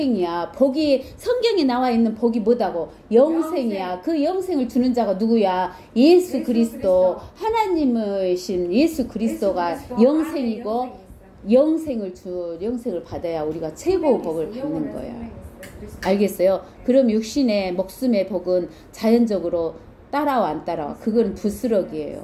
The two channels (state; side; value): identical; both; correlation 1.00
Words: 복이 성경에 나와 있는 복이 뭐다고? 영생이야. 그 영생을 주는 자가 누구야? 예수 그리스도. 하나님이신 예수 그리스도가 영생이고 영생을 받아야 우리가 최고의 복을 받는 거야. 알겠어요? 그럼 육신의 목숨의 복은 자연적으로 따라와 안 따라와? 그건